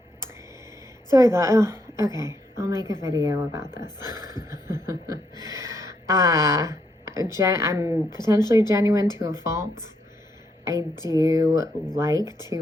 So I thought, okay, I'll make a video about this. I'm potentially genuine to a fault. I do like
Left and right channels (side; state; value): both; normal; correlation 0.77